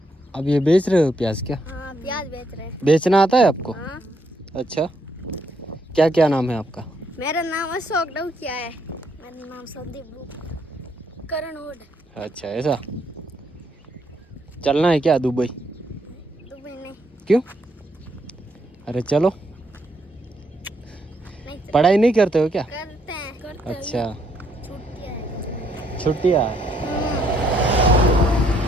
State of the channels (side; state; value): both; normal; correlation 0.73